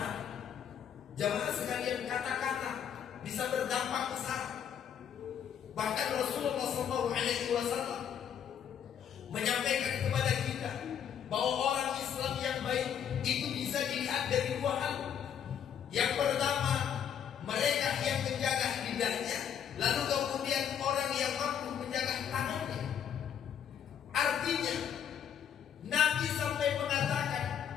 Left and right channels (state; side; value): quieter; right; 8.7 dB